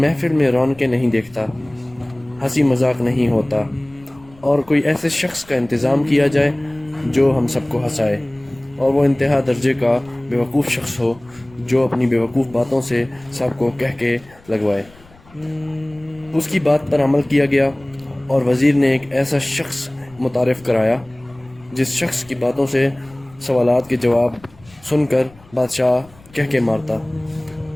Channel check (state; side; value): noise; left; rumble, 26 dB below the sound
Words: میں رونقیں نہیں دیکھتا، ہنسی مذاق نہیں ہوتا، اور کوئی ایسے شخص کا انتظام کیا جائے جو ہم سب کو ہنسائے، اور وہ انتہا درجے کا بیوقوف شخص ہو جو اپنی بیوقوف باتوں سے سب کو کہہ کے لگوائے۔ اس کی بات پر عمل کیا گیا اور وزیر نے ایک ایسا شخص متعارف کرایا جس شخص کی باتوں سے سوالات کے جواب سن کر بادشاہ کہہ کے مارتا۔